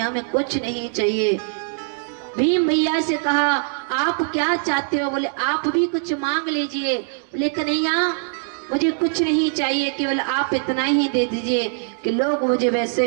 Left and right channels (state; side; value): silent; left; digital silence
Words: में कुछ नहीं चाहिए। भीम भैया से कहा आप क्या चाहते हो। बोले आप भी कुछ मांग लीजिए। बोले कन्हैया मुझे कुछ नहीं चाहिए, केवल आप इतना ही दे दीजिए कि लोग मुझे वैसे